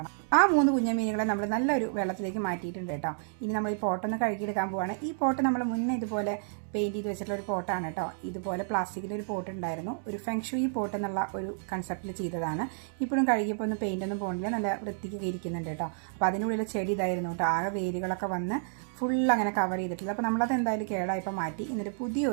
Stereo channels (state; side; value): silent; left; digital silence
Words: ആ 3 കുഞ്ഞ മീനുകളെ നമ്മൾ നല്ലൊരു വെള്ളത്തിലേക്ക് മാറ്റിയിട്ടുണ്ട് കേട്ടോ. ഇനി നമ്മൾ ഈ പോട്ടൊന്ന് കഴുകിയെടുക്കാൻ പോവുകയാണ്. ഈ പോട്ട് നമ്മൾ മുന്നേ ഇതുപോലെ പെയിൻറ്റ് ചെയ്ത് വെച്ചിട്ടുള്ള ഒരു പോട്ടാണ് കേട്ടോ. ഇതുപോലെ പ്ലാസ്റ്റിക്കിൻ്റെ ഒരു പോട്ട് ഉണ്ടായിരുന്നു. ഒരു ഫെങ്ഷുയി പോട്ട് എന്നുള്ള ഒരു കൺസെപ്റ്റിൽ ചെയ്തതാണ്. ഇപ്പോഴും കഴുകിയപ്പോൾ ഒന്ന് പെയിൻ്റൊന്നും പോകണില്ല, നല്ല വൃത്തിക്ക് ഇരിക്കുന്നുണ്ട് കേട്ടോ. അപ്പോൾ അതിനുള്ളിൽ ചെടി ഇതായിരുന്നു കേട്ടോ. ആകെ വേരുകളൊക്കെ വന്ന് ഫുൾ അങ്ങനെ കവർ ചെയ്തിട്ടില്ല. അപ്പോൾ നമ്മളത് എന്തായാലും കേടായപ്പോൾ മാറ്റി. എന്നിട്ട്